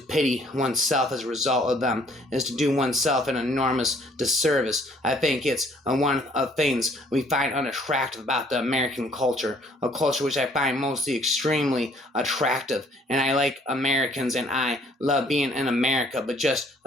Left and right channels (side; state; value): both; normal; correlation 0.61